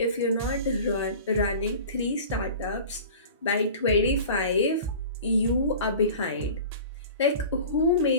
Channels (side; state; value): both; inverted; correlation -0.39